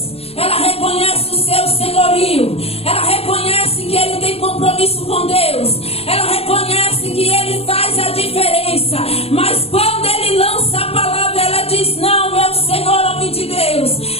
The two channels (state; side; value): late; right; 0.29 ms